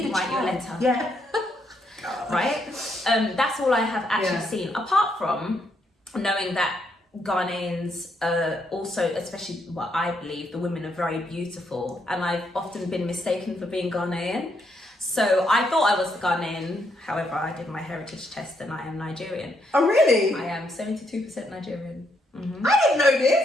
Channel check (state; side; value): normal; both; correlation 0.75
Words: a write child. your letter. Yeah. Right? That's all I have actually seen, apart from knowing that Ghanaians also, especially what I believe, the women are very beautiful, and I've often been mistaken for being Ghanaian. So I thought I was Ghanaian, however I did my heritage test and I am Nigerian. Oh really? I am 72% Nigerian. I didn't know